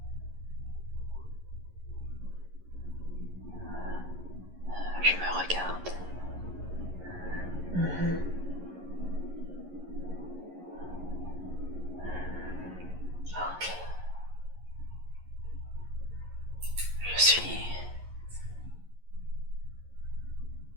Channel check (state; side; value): late; left; 11 ms